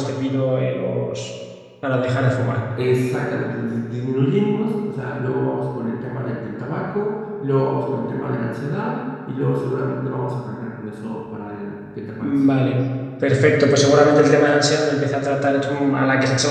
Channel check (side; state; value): both; identical; correlation 1.00